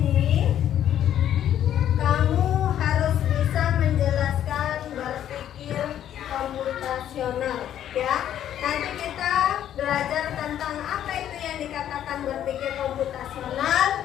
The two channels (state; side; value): quieter; right; 10.8 dB